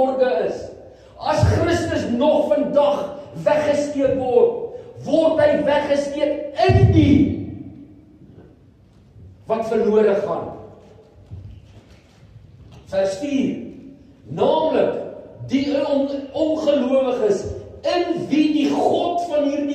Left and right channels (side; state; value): both; identical; correlation 1.00